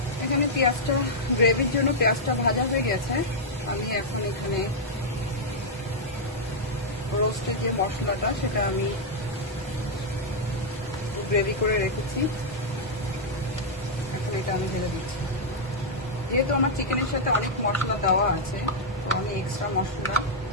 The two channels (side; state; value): both; normal; correlation -0.06